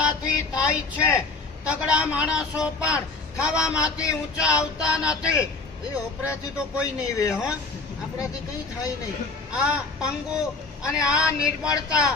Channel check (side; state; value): right; quieter; 3.9 dB